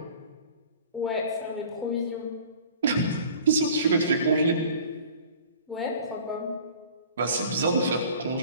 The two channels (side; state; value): both; inverted; correlation -0.45